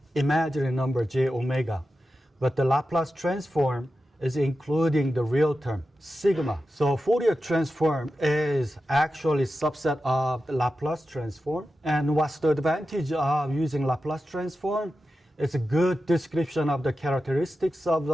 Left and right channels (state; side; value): normal; both; correlation 0.91